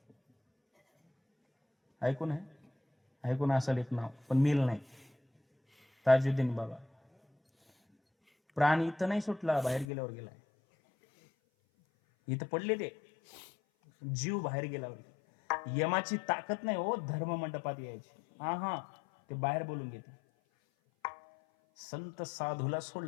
ऐकून आहे? ऐकून असाल एक नाव, पण मेल नाही. ताजुद्दीन बाबा. प्राण इथं नाही सुटला, बाहेर गेल्यावर गेलाय. इथं पडले ते जीव बाहेर गेल्यावर. यमाची ताकद नाही हो धर्म मंडपात यायची. ते बाहेर बोलून घेते. संत साधूला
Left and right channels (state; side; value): drops out; right; at 9.9 s